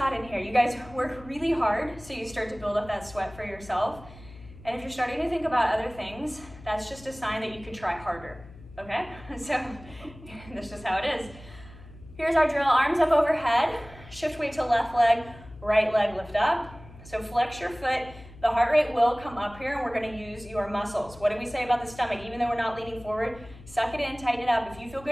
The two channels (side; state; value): left; noise; hum, 19 dB below the sound